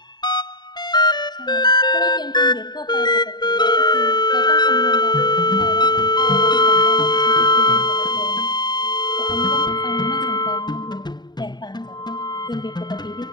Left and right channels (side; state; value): right; late; 0.21 ms